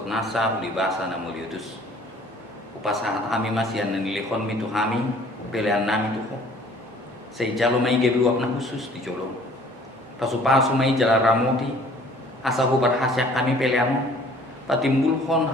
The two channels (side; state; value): both; normal; correlation 0.54